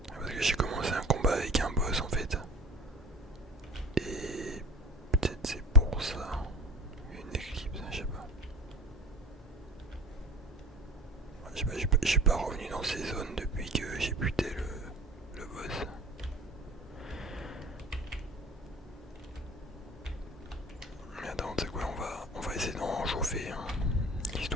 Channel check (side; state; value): both; normal; correlation 0.39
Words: Ah, parce que j'ai commencé un combat avec un boss en fait. Et peut-être c'est pour ça. Il y a une éclipse, je sais pas. J'ai pas revenu dans ces zones depuis que j'ai buté le boss. Mais attends, tu sais quoi, on va essayer d'en chauffer, hein,